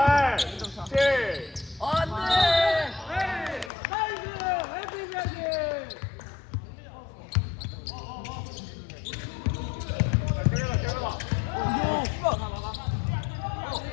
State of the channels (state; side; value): drops out; right; at 3.7 s